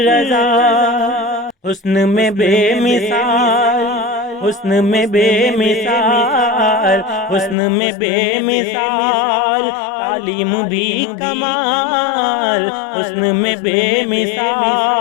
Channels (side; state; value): right; drops out; at 7.6 s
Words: حسن میں بے مثال، حسن میں بے مثال، حسن میں بے مثال، تعلیم بھی کمال، حسن میں بے